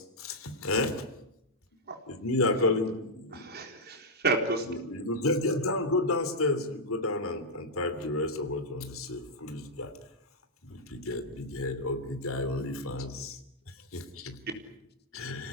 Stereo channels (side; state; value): both; normal; correlation -0.05